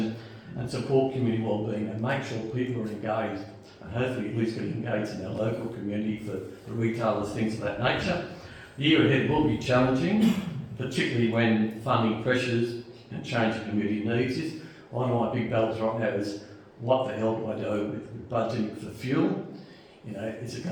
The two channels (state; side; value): identical; both; correlation 1.00